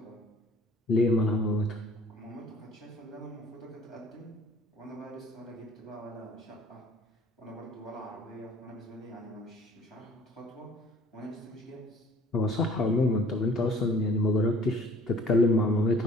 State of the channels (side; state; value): both; normal; correlation 0.53